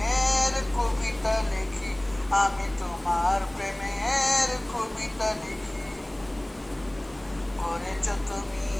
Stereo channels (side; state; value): left; noise; hiss, 28 dB below the sound